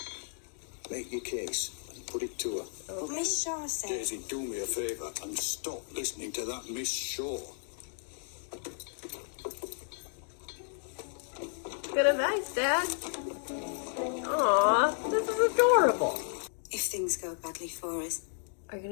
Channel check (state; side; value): silent; right; 56 dB below the other